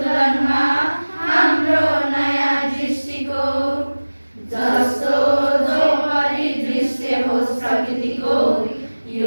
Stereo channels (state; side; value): inverted; both; correlation -1.00